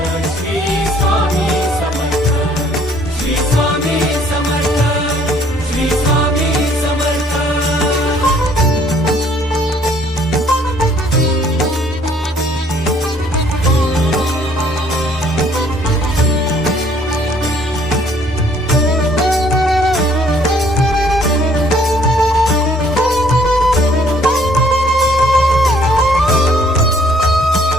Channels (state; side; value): normal; both; correlation 0.61